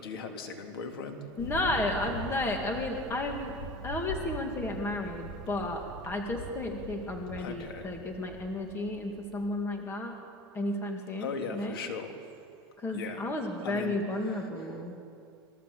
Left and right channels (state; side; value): normal; both; correlation 0.39